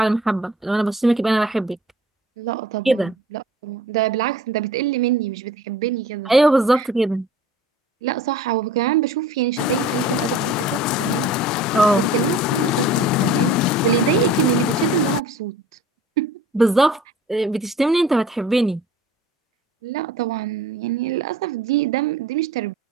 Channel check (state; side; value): normal; both; correlation 0.45